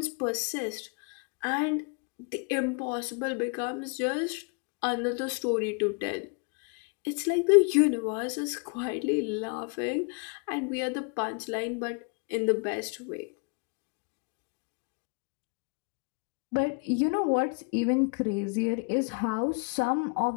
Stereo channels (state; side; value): quieter; right; 36.1 dB